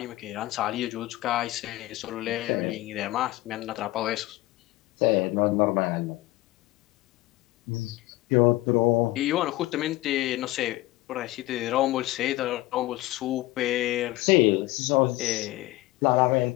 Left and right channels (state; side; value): quieter; right; 18.0 dB